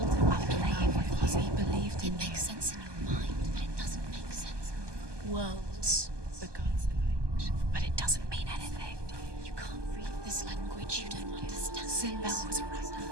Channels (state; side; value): late; left; 1.2 ms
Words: playing with you? He believed It in makes sense in your mind, but it doesn't make sense. Worlds. the gods, but it doesn't mean anything. You can't read this language. You don't understand. Sinbel was